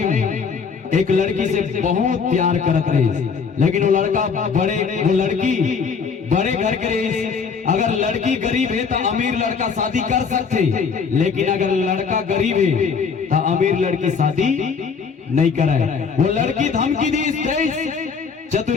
एक लड़की से बहुत प्यार करत रही, लेकिन वो लड़का वो लड़की बड़े घर के रही। अगर लड़की गरीब है तो अमीर लड़का शादी कर सकते, लेकिन अगर लड़का गरीब है तो अमीर लड़की शादी नहीं कराए। वो लड़की धमकी दी,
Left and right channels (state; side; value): quieter; right; 5.7 dB